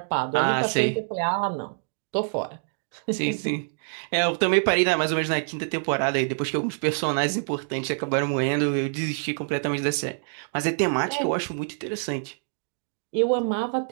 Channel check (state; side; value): silent; left; digital silence